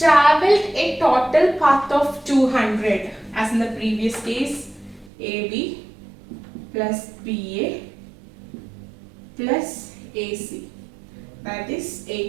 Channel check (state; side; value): drops out; left; at 5.1 s